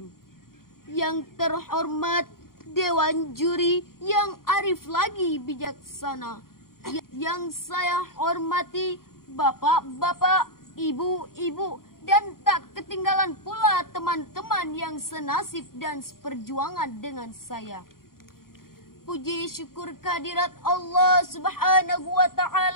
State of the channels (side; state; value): right; late; 0.92 ms